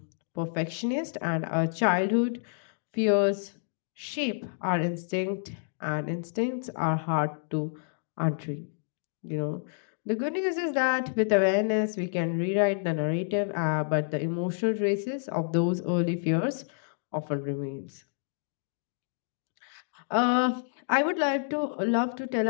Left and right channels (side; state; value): right; silent; digital silence